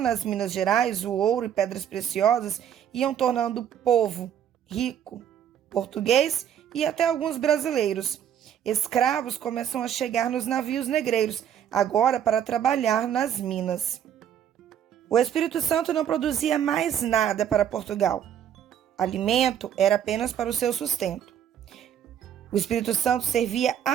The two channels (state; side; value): quieter; left; 9.5 dB